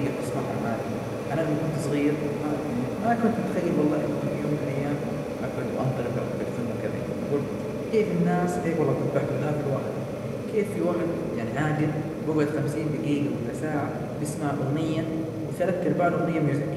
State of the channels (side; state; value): both; identical; correlation 1.00